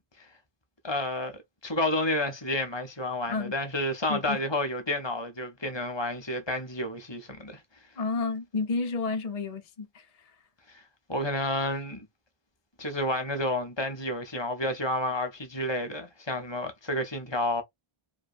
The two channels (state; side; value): late; right; 1.2 ms